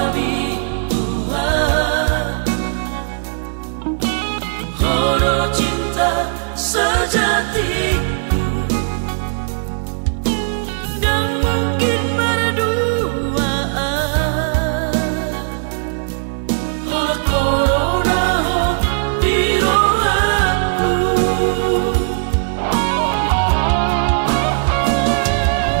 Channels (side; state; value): left; silent; digital silence